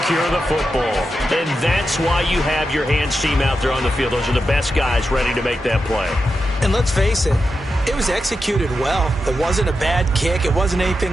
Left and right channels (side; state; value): both; normal; correlation 0.89